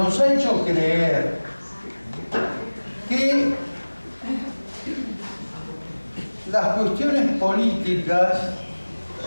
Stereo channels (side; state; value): both; inverted; correlation -1.00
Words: ha hecho creer que las cuestiones políticas